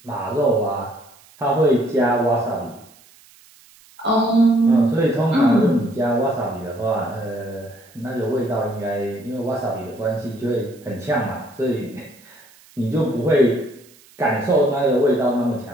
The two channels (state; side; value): noise; right; hiss, 27 dB below the sound